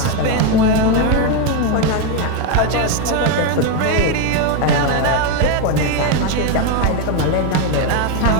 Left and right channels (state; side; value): different; both; correlation 0.02